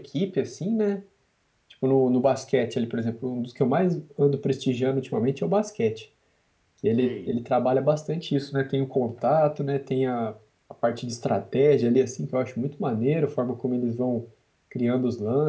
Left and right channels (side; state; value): both; identical; correlation 1.00